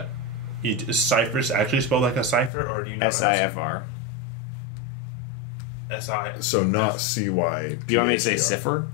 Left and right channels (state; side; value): drops out; right; at 2.5 s